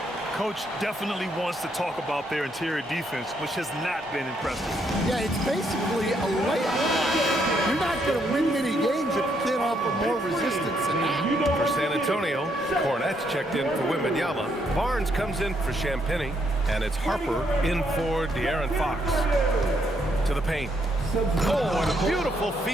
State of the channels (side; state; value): both; normal; correlation 0.74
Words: Coach definitely wants to talk about their interior defense, which has not been impressive. Yeah, it's basically a layup. You're not going to win many games if you can't offer more resistance than that. For San Antonio, Cornette's checked in for Wemby. Barnes comes in for Champagny, and it's Harper in for De'Aaron Fox. To the paint. Oh, and a beautiful